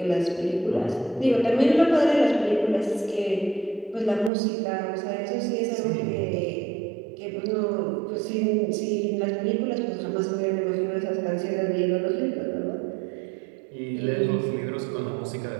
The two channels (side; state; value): left; drops out; at 4.3 s